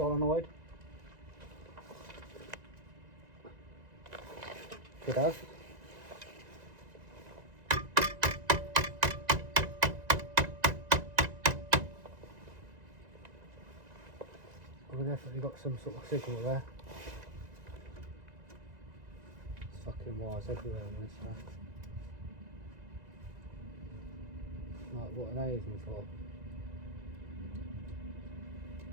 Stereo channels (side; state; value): left; late; 1.9 ms